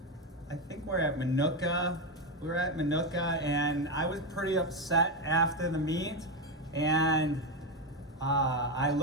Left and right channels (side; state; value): both; normal; correlation 0.10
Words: I think we're at Minooka. We were at Minooka, and I was pretty upset after the meet. And I